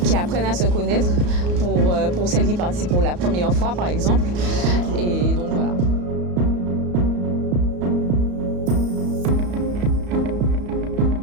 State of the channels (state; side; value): late; left; 34 ms